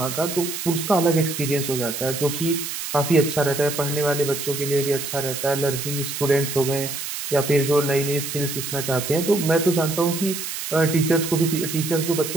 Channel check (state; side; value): noise; right; hiss, 6 dB below the sound